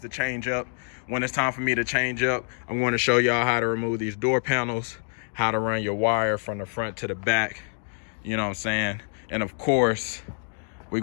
to change up, when it's time for me to change up, I'm going to show y'all how to remove these door panels, how to run your wire from the front to the back, you know what I'm saying? And of course, we're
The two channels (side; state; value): right; silent; digital silence